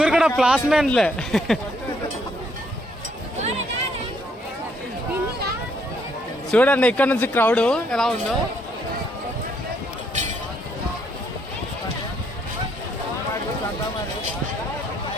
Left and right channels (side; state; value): both; normal; correlation 0.70